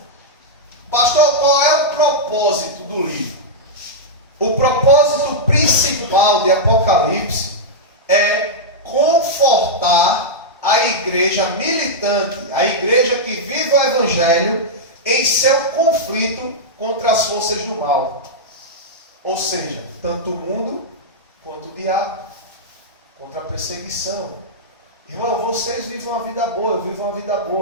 Pastor, qual militante, a igreja que vive o Evangelho em seu conflito contra as forças do mal. Ou seja, tanto o mundo quanto o diabo, contra a perseguição. Irmão, vocês vivem uma vida boa, eu vivo uma vida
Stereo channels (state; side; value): normal; both; correlation -0.08